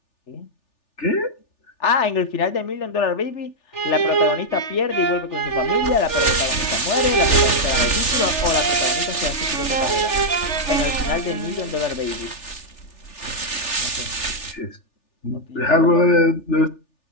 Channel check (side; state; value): right; late; 3.4 ms